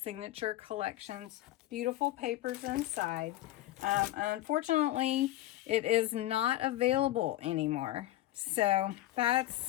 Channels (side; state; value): right; quieter; 15.3 dB